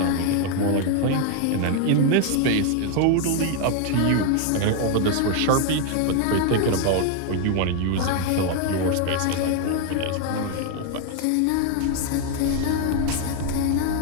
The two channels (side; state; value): both; different; correlation 0.01